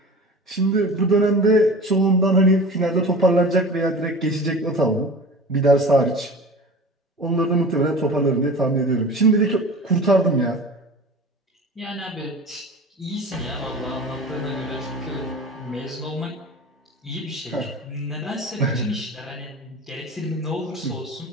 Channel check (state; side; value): normal; both; correlation 0.36